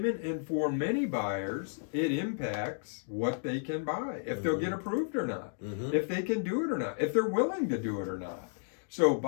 and for many buyers, it impacts what they can buy, if they'll get approved or not, if they can do it or not, if they're willing to do it or not. So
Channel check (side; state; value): right; silent; digital silence